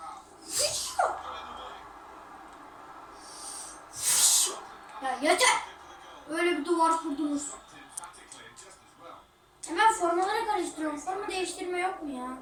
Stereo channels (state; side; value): identical; both; correlation 1.00